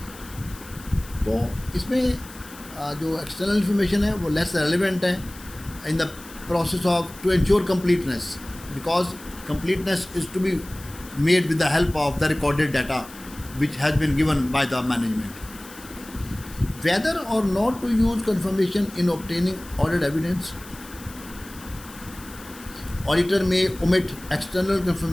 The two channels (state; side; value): noise; left; hiss, 18 dB below the sound